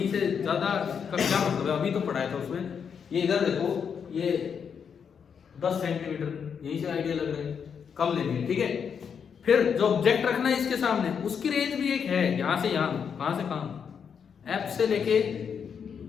से ज्यादा का क्या मतलब है, अभी तो पढ़ाया था उसमें। ये इधर देखो, ये 10 सेंटीमीटर, यहीं से आइडिया लग रहा है, कम लेंगे, ठीक है। फिर जो ऑब्जेक्ट रखना है इसके सामने, उसकी रेंज भी एक है, यहां से यहां, कहां से कहां, एफ से लेके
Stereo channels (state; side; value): quieter; right; 7.0 dB